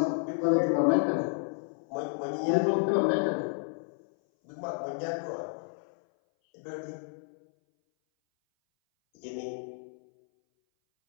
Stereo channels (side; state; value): right; silent; 57 dB below the other